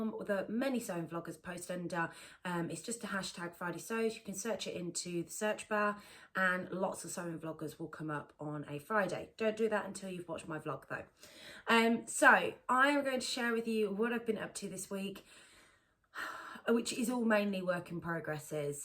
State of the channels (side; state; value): both; identical; correlation 1.00